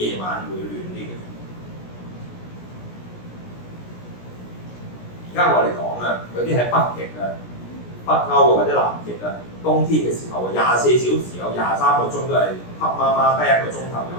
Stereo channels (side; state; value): right; late; 17 ms